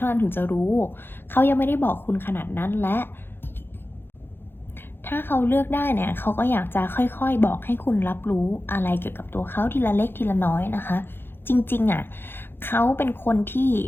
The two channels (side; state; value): right; late; 0.10 ms